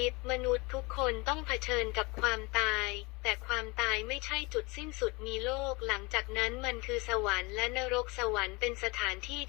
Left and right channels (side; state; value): right; quieter; 26.3 dB